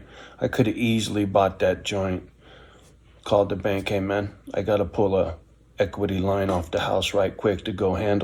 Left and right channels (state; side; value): identical; both; correlation 1.00